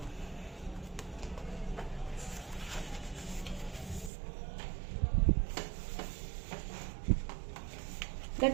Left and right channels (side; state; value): left; drops out; at 4.1 s